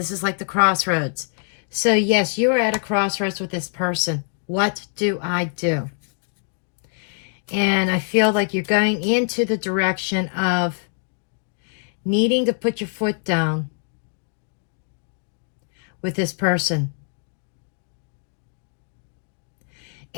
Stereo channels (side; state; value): right; silent; 59 dB below the other